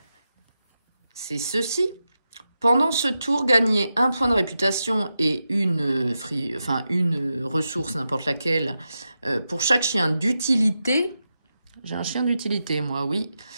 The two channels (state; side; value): inverted; both; correlation -0.89